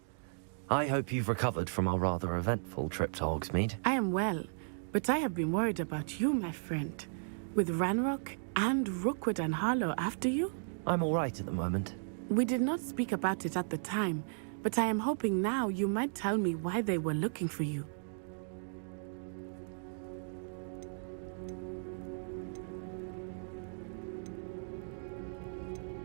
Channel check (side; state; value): left; silent; digital silence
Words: I hope you've recovered from our rather eventful trip to Hogsmeade. I am well, but I have been worried about you, my friend. With Ranrock and Rookwood and Harlow after you? I'm all right at the moment. We did not speak about it at the time, but I am hoping now you might tell me why they were looking for you.